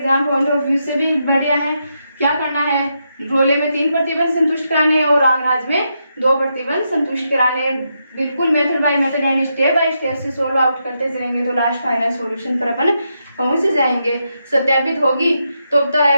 पॉइंट ऑफ व्यू से भी बढ़िया है। क्या करना है, रोले में 3 प्रतिबंध संतुष्ट कराने और लाग्रांज में 2 प्रतिबंध संतुष्ट कराने। बिल्कुल मेथड बाय मेथड यानी स्टेप बाय स्टेप से सोल्व आउट करते चलेंगे तो लास्ट फाइनल सॉल्यूशन पर अपन पहुंच जाएंगे। सत्यापित होगी तो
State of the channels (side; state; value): both; inverted; correlation -0.83